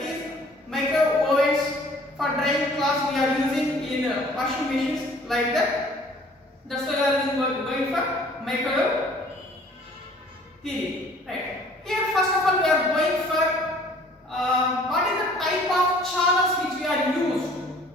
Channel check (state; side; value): normal; both; correlation 0.54